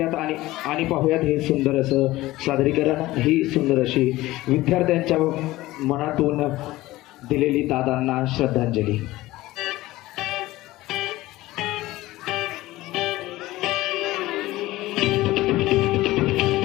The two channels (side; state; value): right; quieter; 17.7 dB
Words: आणि पाहूयात हे सुंदर असं सादरीकरण, ही सुंदर अशी विद्यार्थ्यांच्या मनातून दिलेली दादांना श्रद्धांजली.